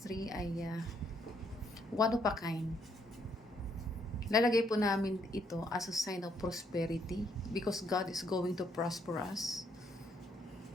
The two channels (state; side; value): normal; both; correlation 0.71